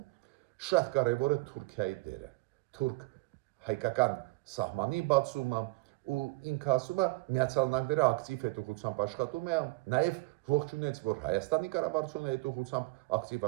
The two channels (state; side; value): quieter; left; 23.9 dB